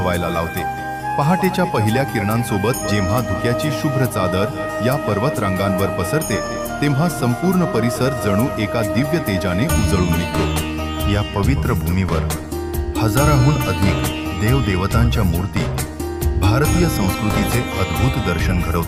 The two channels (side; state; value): both; identical; correlation 1.00